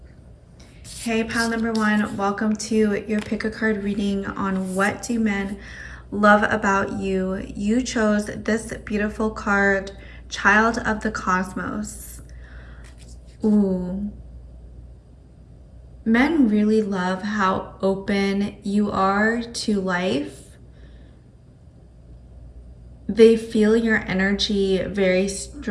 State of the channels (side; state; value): both; identical; correlation 1.00